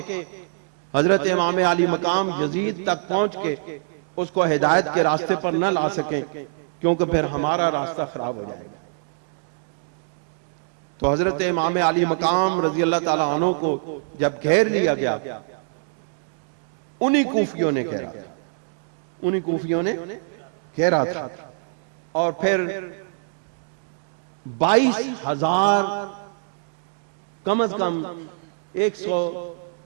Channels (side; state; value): left; silent; digital silence